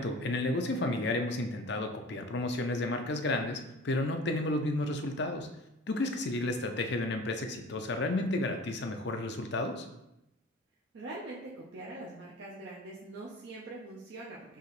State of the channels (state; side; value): normal; both; correlation 0.42